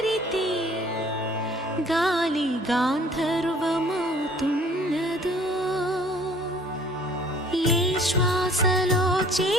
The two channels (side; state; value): both; normal; correlation 0.54